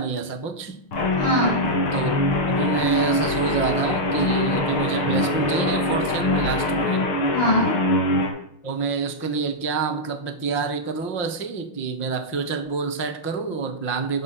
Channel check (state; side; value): late; right; 5.7 ms